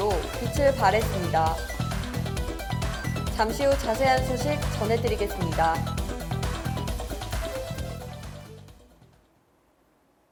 빛을 발했습니다. 잠시 후 자세한 소식 전해드리겠습니다.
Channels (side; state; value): both; identical; correlation 1.00